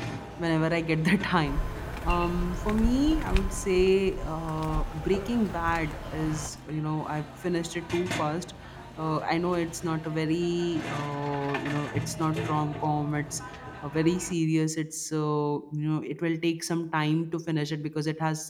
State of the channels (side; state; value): both; identical; correlation 1.00